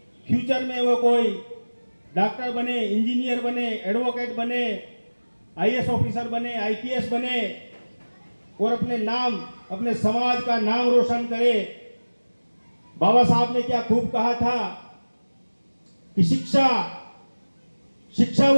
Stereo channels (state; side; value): inverted; both; correlation -1.00